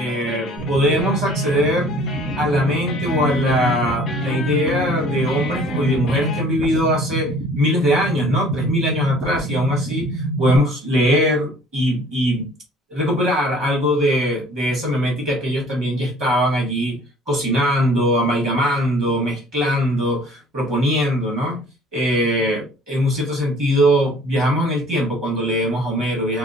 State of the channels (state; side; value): normal; both; correlation 0.52